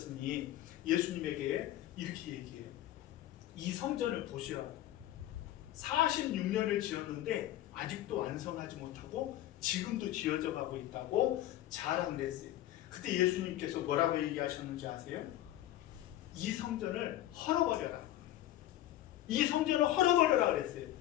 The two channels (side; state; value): right; quieter; 13.9 dB